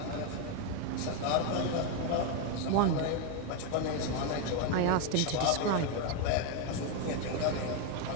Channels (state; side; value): different; both; correlation 0.02